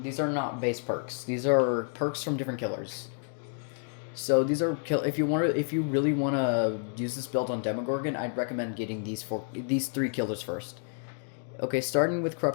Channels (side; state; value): right; silent; 58 dB below the other